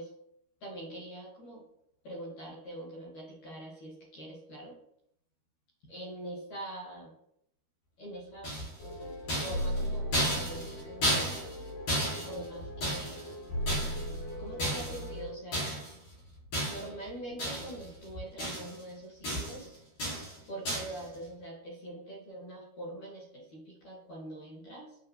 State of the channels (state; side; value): late; right; 13 ms